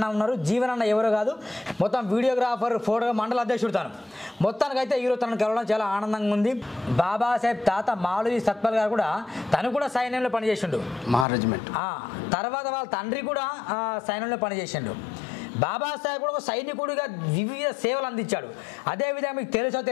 ఉన్నారు. జీవన్ అన్న ఎవరో కాదు, మొత్తం వీడియోగ్రాఫర్, ఫోటో మండల అధ్యక్షుడు తాను. మొత్తానికైతే ఈరోజు తనను కలవడం చాలా ఆనందంగా ఉంది. బాబాసాహెబ్ తాత మాలవి సత్పాల్ గారు కూడా తను కూడా సైన్యంలో పనిచేసిండు, మహారెజిమెంట్. తర్వాత వాళ్ళ తండ్రి కూడా సైన్యంలో పనిచేసిండు. బాబాసాహెబ్ కూడా ఒక సైనికుడిగా వివిధ సేవలు అందించాడు. అదేవిధంగా మీకు తెలుసో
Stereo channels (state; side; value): drops out; right; at 11.2 s